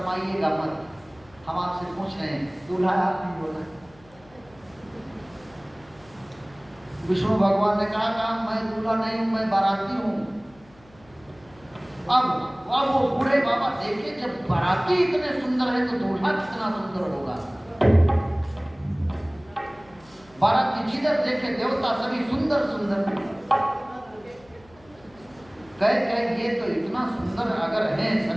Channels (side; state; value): left; noise; hum, 27 dB below the sound